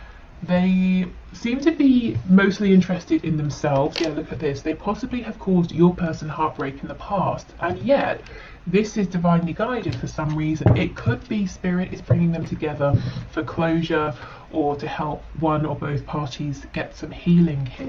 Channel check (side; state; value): both; identical; correlation 1.00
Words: They seem to be mostly interested in themselves. Yeah, look at this. They possibly have caused your person heartbreak in the past, and yet this is divinely guided for some reason. It could be Spirit is bringing them together for closure or to help one or both parties get some healing